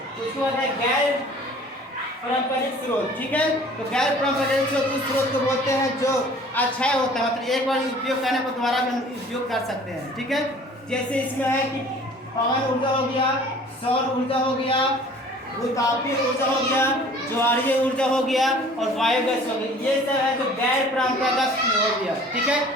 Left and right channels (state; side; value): normal; both; correlation 0.49